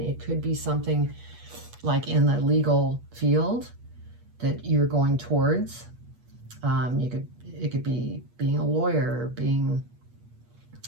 it could be something like in the legal field that you're going towards. It could be being a lawyer, being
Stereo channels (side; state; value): left; late; 8.3 ms